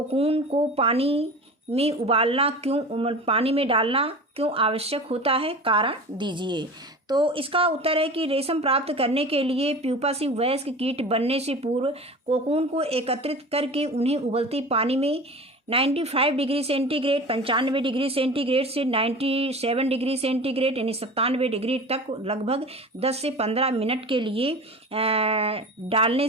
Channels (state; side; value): normal; both; correlation 0.34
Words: को पानी में डालना क्यों आवश्यक होता है? कारण दीजिए। तो इसका उत्तर है कि रेशम प्राप्त करने के लिए प्यूपा से वयस्क कीट बनने से पूर्व कोकून को एकत्रित करके उन्हें उबलते पानी में 95 डिग्री सेंटीग्रेड 95 डिग्री सेंटीग्रेड से 97 डिग्री सेंटीग्रेड यानी 97 डिग्री तक लगभग 10 से 15 मिनट के लिए डालने